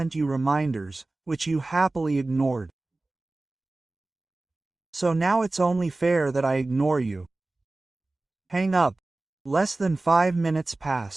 you reminders, which you happily ignored. So now it's only fair that I ignore you. Hang up. Less than 5 minutes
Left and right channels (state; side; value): quieter; left; 3.0 dB